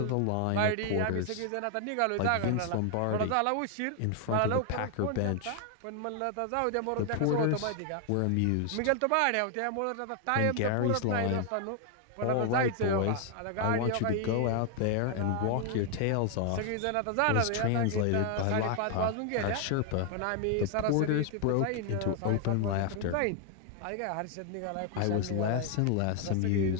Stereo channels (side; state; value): both; different; correlation 0.00